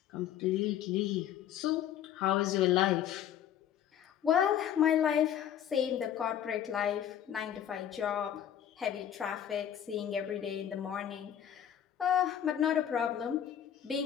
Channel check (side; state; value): right; quieter; 10.0 dB